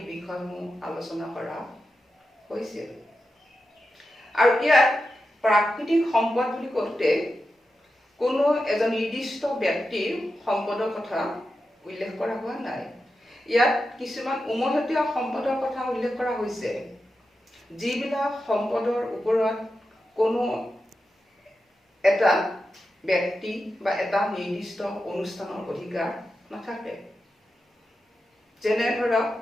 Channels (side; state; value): both; normal; correlation 0.90